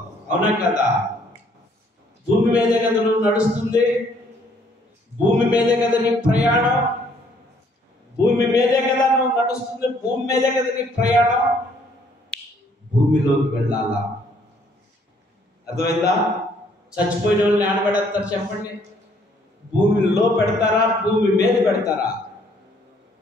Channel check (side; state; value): both; normal; correlation 0.64